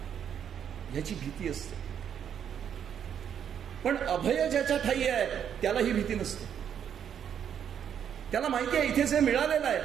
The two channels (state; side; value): quieter; left; 8.7 dB